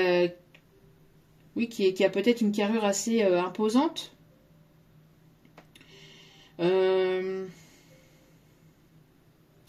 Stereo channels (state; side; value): identical; both; correlation 1.00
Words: oui, qui a peut-être une carrure assez imposante.